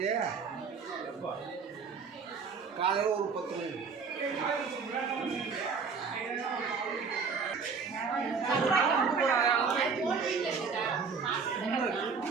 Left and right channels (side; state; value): left; quieter; 5.4 dB